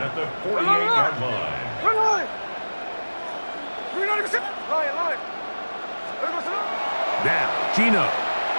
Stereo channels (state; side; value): inverted; both; correlation -1.00